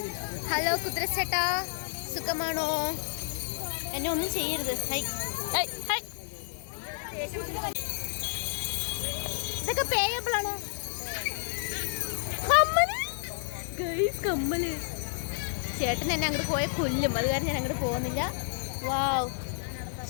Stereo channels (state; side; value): silent; right; digital silence